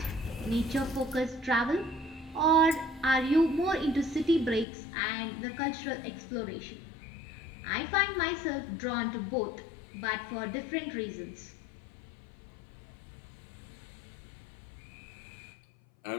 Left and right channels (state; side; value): drops out; right; at 4.7 s